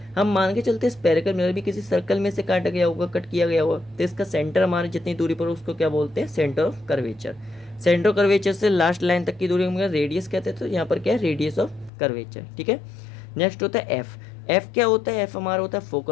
हम मान के चलते हैं स्पेरिकल मिरर भी किसी सर्कल में से काटा गया होगा, कट किया गया होगा, तो इसका सेंटर हमारे जितनी दूरी पर उसको क्या बोलते हैं? Centre of curvature. Centre of curvature से लास्ट लाइन तक की दूरी हम रेडियस कहते हैं, तो यहाँ पर क्या है? Radius of curvature. ठीक है, नेक्स्ट होता है एफ। एफ क्या होता है? एफ हमारा होता है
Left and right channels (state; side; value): drops out; right; at 11.9 s